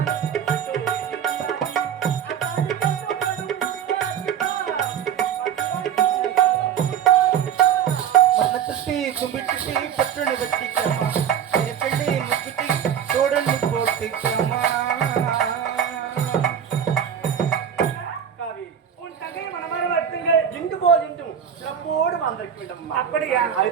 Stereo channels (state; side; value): quieter; left; 8.6 dB